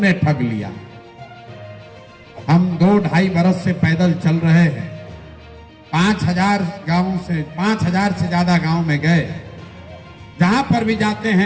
ठग लिया। हम 2-2.5 बरस से पैदल चल रहे हैं। 5,000 गांव से 5,000 से ज्यादा गांव में गए। जहां पर भी जाते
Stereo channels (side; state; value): both; identical; correlation 1.00